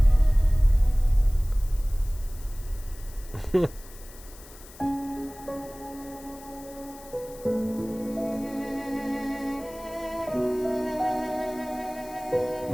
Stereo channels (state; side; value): noise; left; hiss, 20 dB below the sound